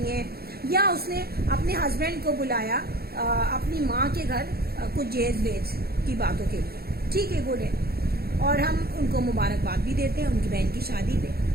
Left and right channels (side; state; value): left; late; 0.45 ms